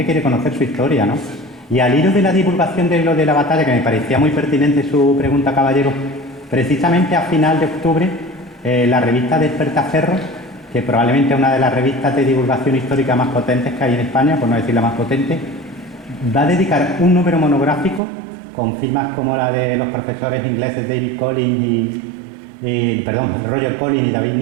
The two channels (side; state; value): left; drops out; at 18.0 s